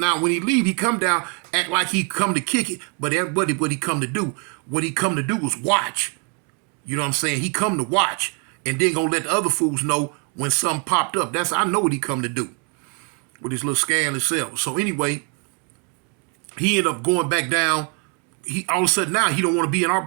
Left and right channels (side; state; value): left; quieter; 37.5 dB